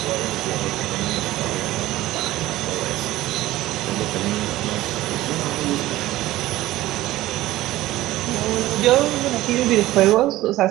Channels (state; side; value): quieter; left; 16.3 dB